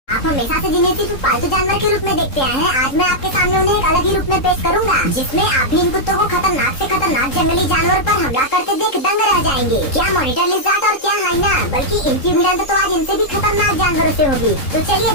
आप हमेशा से जिन्हें सिर्फ पालतू जानवर के रूप में देखते आए हैं, आज मैं आपके सामने उन्हें एक अलग ही रूप में पेश करूंगा, जिसमें आप भी इन कुत्तों को खतरनाक से खतरनाक जंगली जानवर पर हमला करते देख दंग रह जाएंगे। क्या मॉनिटर लिज़ार्ड और क्या हाइना, बल्कि इनकी भिड़ंत तो आज इनसे भी खतरनाक जानवरों से होगी। तो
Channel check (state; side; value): late; right; 3.7 ms